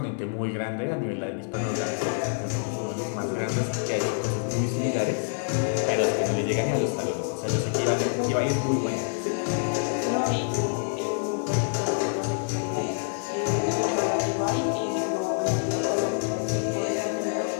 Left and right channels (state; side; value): silent; right; digital silence